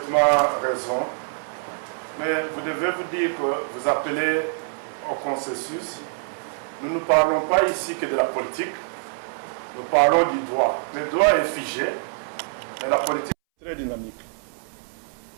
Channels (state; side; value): silent; left; 62 dB below the other